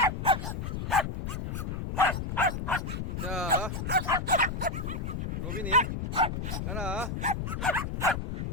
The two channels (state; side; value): noise; left; rumble, 4 dB below the sound